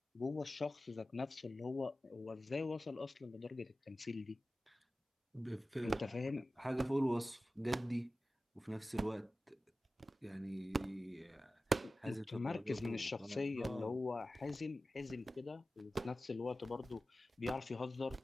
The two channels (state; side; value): normal; both; correlation 0.95